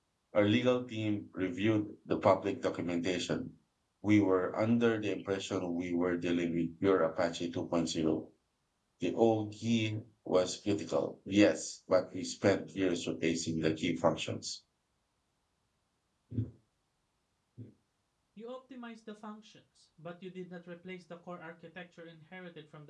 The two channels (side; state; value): both; identical; correlation 1.00